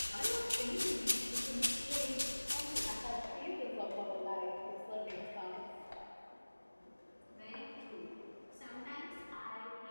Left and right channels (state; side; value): inverted; both; correlation -1.00